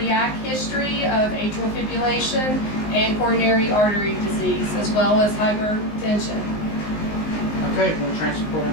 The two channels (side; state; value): right; late; 19 ms